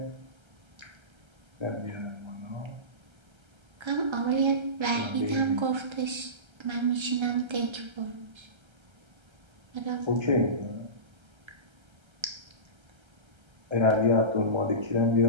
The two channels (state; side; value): late; left; 1.3 ms